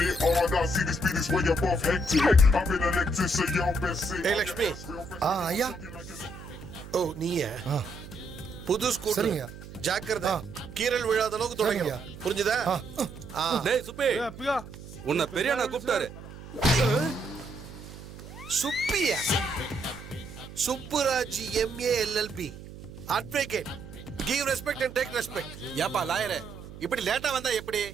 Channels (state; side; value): noise; right; hum, 14 dB below the sound